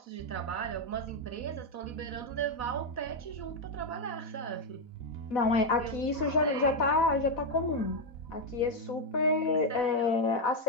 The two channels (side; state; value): right; late; 4.1 ms